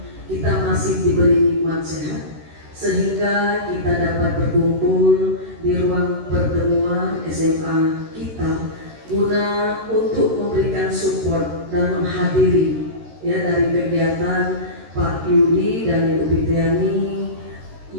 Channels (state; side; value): late; left; 13 ms